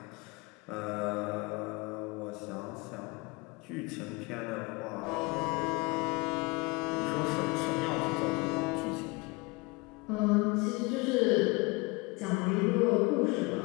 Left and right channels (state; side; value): quieter; right; 26.4 dB